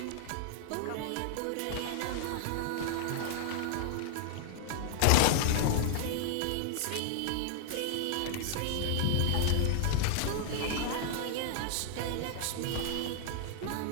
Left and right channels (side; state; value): both; different; correlation 0.00